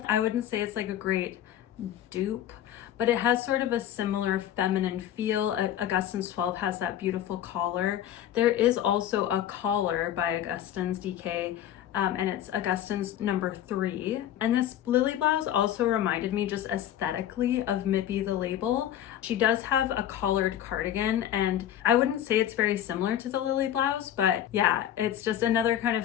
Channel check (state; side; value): quieter; right; 11.1 dB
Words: I wouldn't say it's like a great dupe, but it has sort of a similar feminine feel. Augustins 12 has that beautiful collar. There is also a collar by Augustins DK, and it's Augustins number 3. And this Lilly blouse also reminded me just aesthetically of Mipi the label. She does have a collared cardigan, and I wouldn't say it's very similar to the Lilly blouse, but yeah, it's just another kind